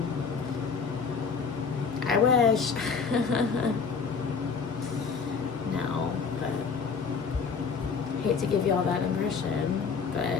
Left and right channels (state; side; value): quieter; right; 5.5 dB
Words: I wish. No, but hate to give you all that impression,